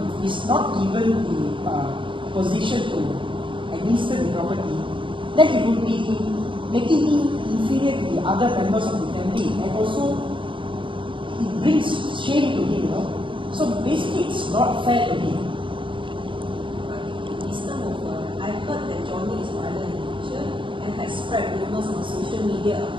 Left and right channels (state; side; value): late; left; 0.24 ms